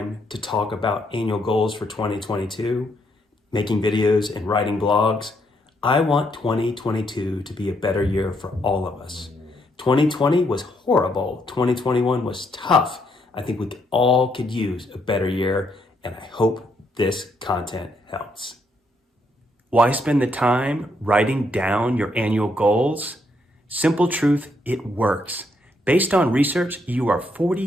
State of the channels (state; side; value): normal; both; correlation 0.74